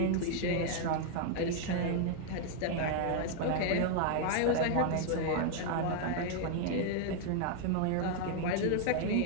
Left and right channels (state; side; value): different; both; correlation 0.00